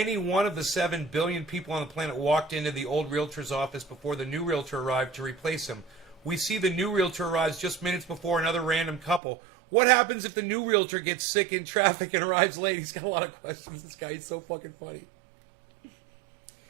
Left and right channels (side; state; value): left; drops out; at 9.2 s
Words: one of the 7 billion people on the planet walked into the old realtor's office before the new realtor arrived to replace him? We see the new realtor arrives just minutes before another random couple. What happens if the new realtor gets sick in traffic and arrives late? He's got a lot of questions. This guy is so fucking funny.